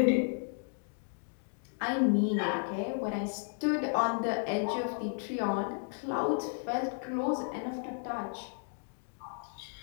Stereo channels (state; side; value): silent; right; 55 dB below the other